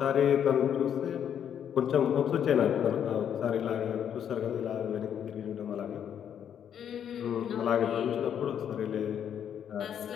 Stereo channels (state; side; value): quieter; right; 8.9 dB